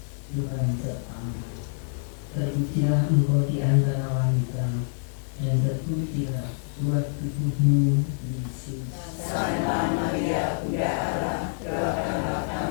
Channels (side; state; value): right; silent; digital silence